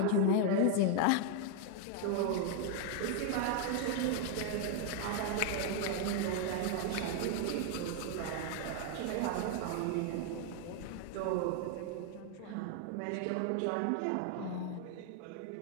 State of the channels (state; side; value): different; both; correlation 0.00